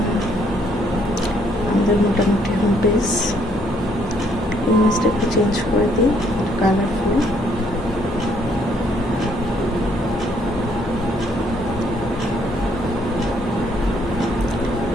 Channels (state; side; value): normal; both; correlation 0.68